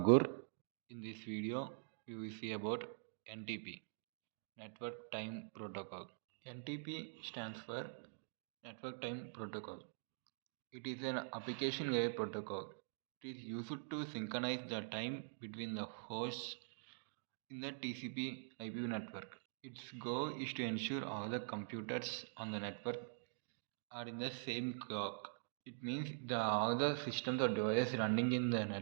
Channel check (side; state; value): left; silent; digital silence